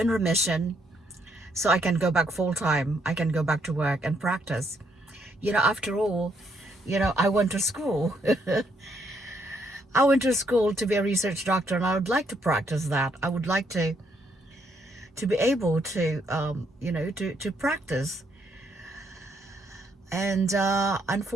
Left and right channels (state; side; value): normal; both; correlation 0.73